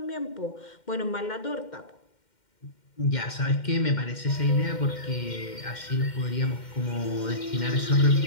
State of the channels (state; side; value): late; right; 2.1 ms